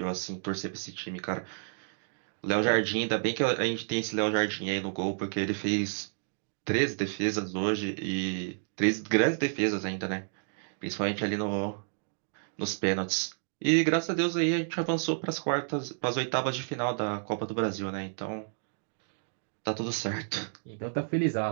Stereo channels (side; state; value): left; silent; digital silence